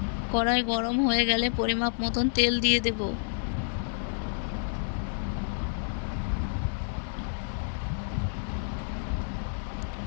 কড়াই গরম হয়ে গেলে পরিমাপ মতন তেল দিয়ে দেব।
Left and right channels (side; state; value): right; silent; digital silence